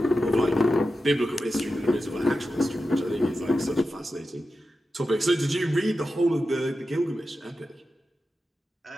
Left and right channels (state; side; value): normal; both; correlation 0.91